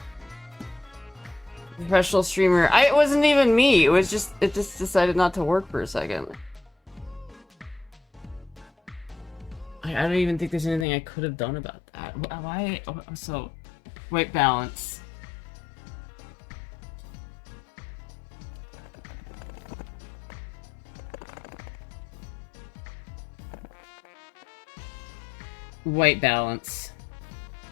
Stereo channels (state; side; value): drops out; right; at 10.9 s